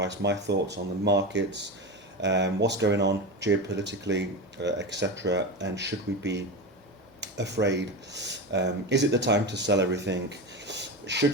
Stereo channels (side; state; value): both; normal; correlation 0.21